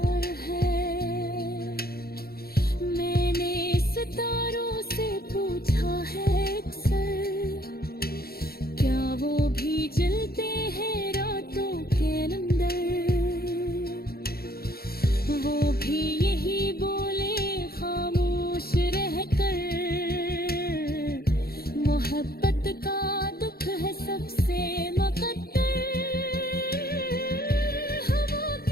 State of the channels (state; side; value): late; right; 0.44 ms